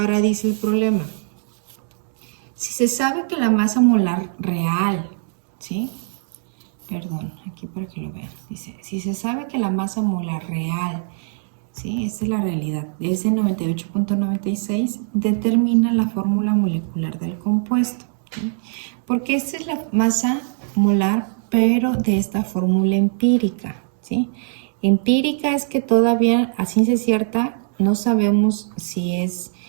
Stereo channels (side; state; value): left; silent; digital silence